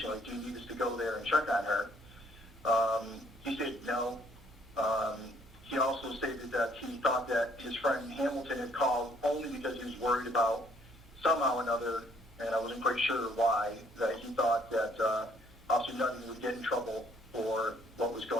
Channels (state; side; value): normal; both; correlation 0.64